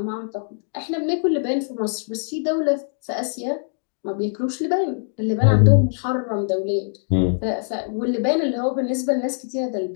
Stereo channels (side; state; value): right; silent; digital silence